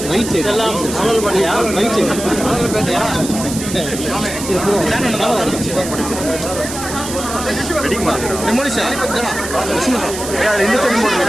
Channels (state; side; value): noise; right; hiss, 8 dB below the sound